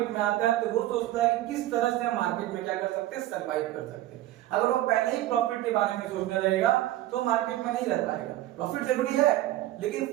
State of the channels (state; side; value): quieter; left; 15.0 dB